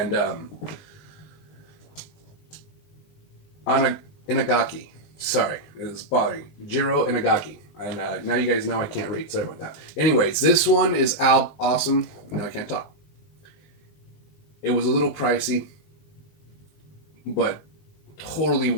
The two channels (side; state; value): right; late; 19 ms